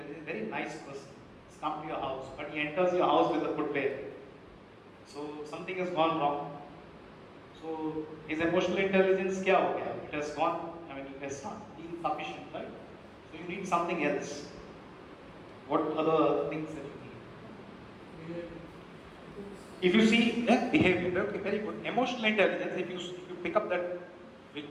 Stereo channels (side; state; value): both; identical; correlation 1.00